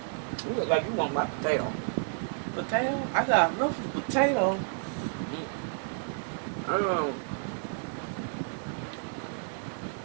You look like you want my potato. Potato? I got enough potato.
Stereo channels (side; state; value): left; silent; digital silence